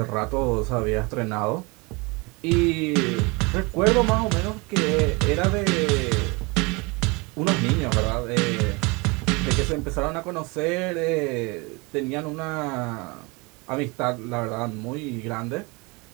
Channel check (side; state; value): left; quieter; 27.4 dB